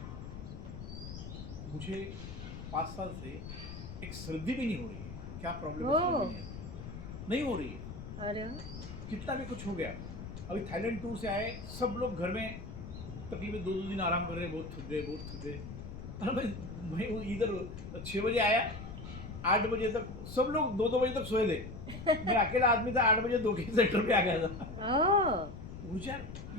मुझे 5 साल से एक सर्दी भी नहीं हो रही है. क्या प्रॉब्लम है, सर्दी नहीं हो रही है. अरे कितना भी कुछ हो गया. अभी थाईलैंड टूर से आए, सब लोग घर में तकरीबन 2 दिन आराम कर रहे हैं, बहुत थक गए. अरे मैं इधर 6 बजे आया, 8 बजे तक सब लोग 2-2 बजे तक सोए थे. मैं अकेला आदमी था, 8 बजे 2 के सेंटर पे आ गया था. ऊर्जा,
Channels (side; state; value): left; noise; rumble, 10 dB below the sound